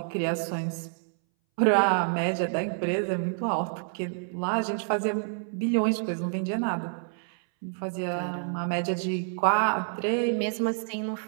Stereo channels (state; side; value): silent; left; 59 dB below the other